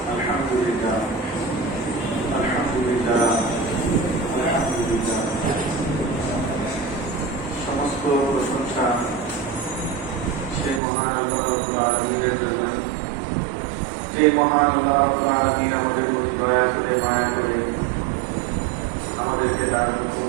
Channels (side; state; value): left; drops out; at 10.8 s